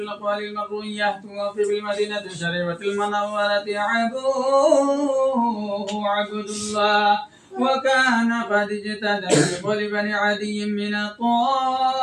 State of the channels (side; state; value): both; identical; correlation 1.00